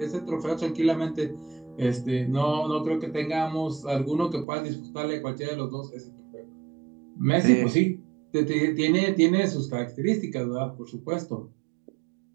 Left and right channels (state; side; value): drops out; left; at 4.5 s